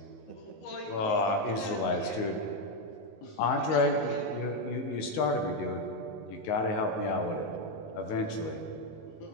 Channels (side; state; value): right; late; 19 ms